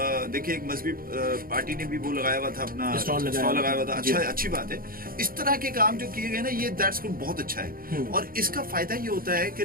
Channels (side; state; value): left; late; 0.42 ms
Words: देखिए एक मजहबी पार्टी ने भी वो लगाया हुआ था, अपना स्टॉल लगाया हुआ था। अच्छा, अच्छी बात है। इस तरह के काम जो किए गए ना, ये दैट्स गुड, बहुत अच्छा है। और इसका फायदा ये होता है कि